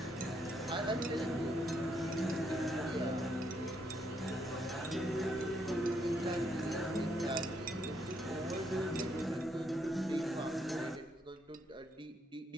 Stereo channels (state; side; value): normal; both; correlation 0.75